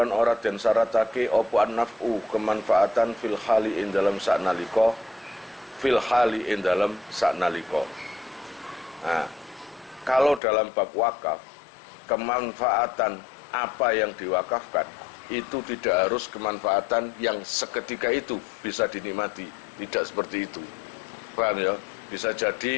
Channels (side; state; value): right; drops out; at 10.4 s